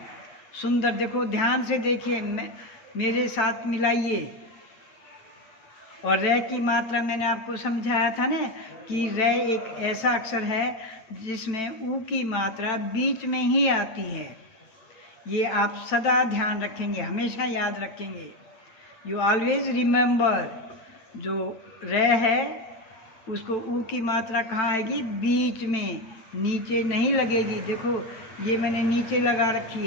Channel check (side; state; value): right; late; 9.0 ms